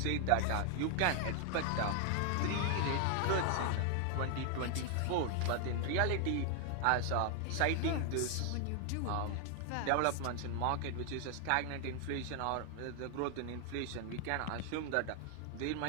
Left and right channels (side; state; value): both; different; correlation 0.00